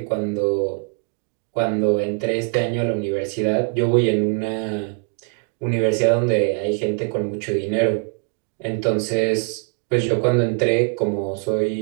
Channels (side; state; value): left; quieter; 39.3 dB